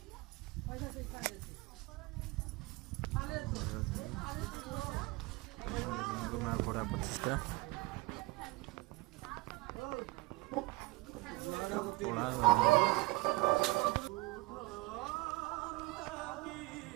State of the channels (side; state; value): left; quieter; 23.6 dB